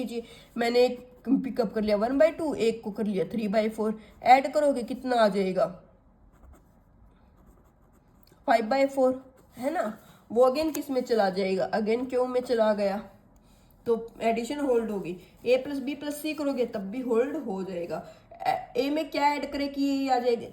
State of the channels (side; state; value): both; identical; correlation 1.00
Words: मैंने एक पिकअप कर लिया 1/2, एक को कर लिया 3/4, ऐड करोगे कितना आ जाएगा 5/4, है ना। वो अगेन किस में चला जाएगा, अगेन क्यू में चला गया, तो एडिशन होल्ड होगी। ए प्लस बी प्लस सी करोगे तब भी होल्ड हो जाएगा। ए में क्या ऐड करे कि ये आ जाएगा,